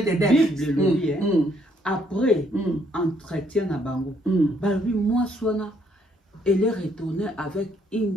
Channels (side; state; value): both; normal; correlation 0.69